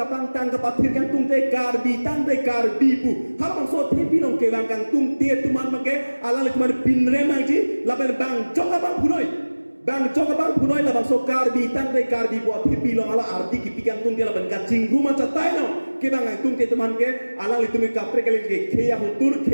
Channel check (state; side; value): inverted; both; correlation -1.00